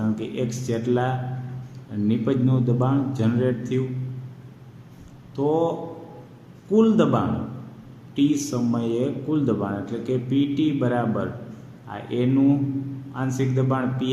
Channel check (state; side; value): identical; both; correlation 1.00